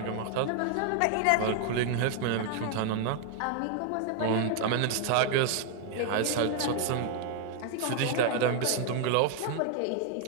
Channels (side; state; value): both; different; correlation 0.00